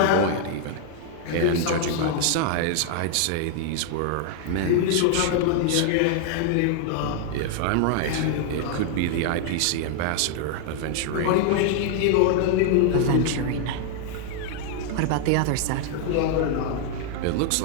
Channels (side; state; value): both; different; correlation 0.00